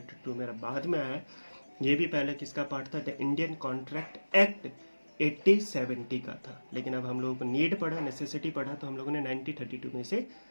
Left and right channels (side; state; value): both; inverted; correlation -1.00